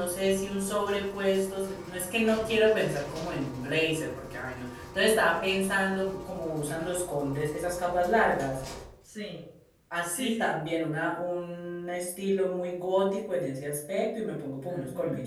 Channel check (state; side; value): identical; both; correlation 1.00